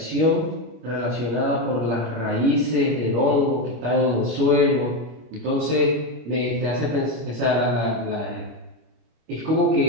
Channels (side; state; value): left; late; 26 ms